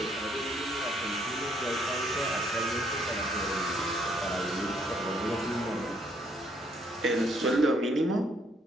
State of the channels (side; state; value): both; normal; correlation 0.68